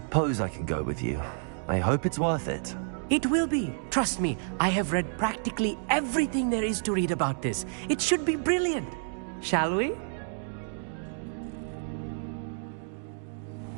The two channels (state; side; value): silent; left; digital silence